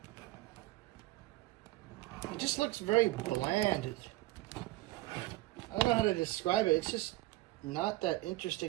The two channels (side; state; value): left; quieter; 18.5 dB